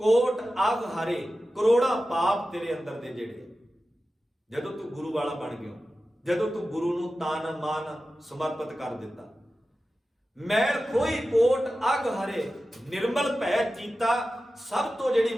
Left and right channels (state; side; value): normal; both; correlation 0.94